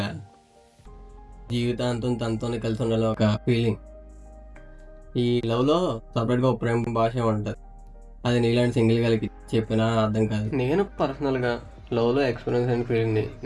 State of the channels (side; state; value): both; identical; correlation 1.00